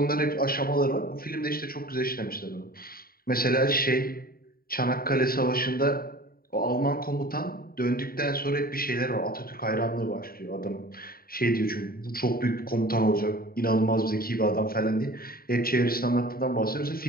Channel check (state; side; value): late; right; 0.43 ms